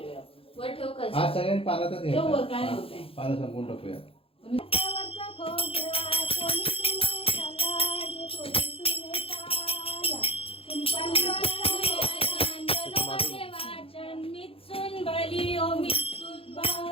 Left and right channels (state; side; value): late; right; 0.27 ms